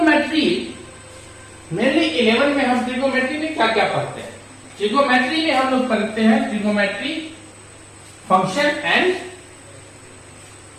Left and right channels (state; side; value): identical; both; correlation 1.00